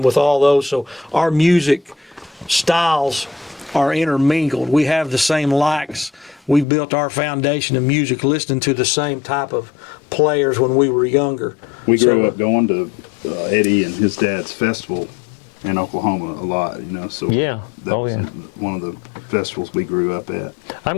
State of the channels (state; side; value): drops out; right; at 6.7 s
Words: with all those. So our music styles are intermingled. We have the same likes. We built our foundation of music listening to the same type of players when we were younger. We grew up going to Eddie and his dad's festival in Oklahoma a lot, so that was one of the festivals we grew up at. I'm